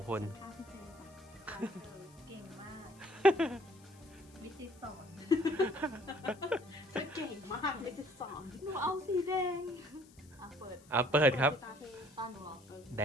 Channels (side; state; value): left; noise; hiss, 26 dB below the sound